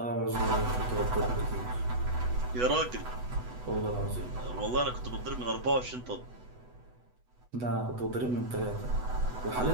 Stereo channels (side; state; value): left; late; 8.1 ms